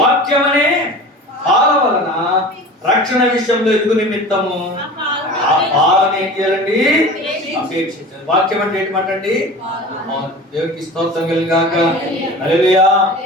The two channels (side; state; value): both; normal; correlation 0.37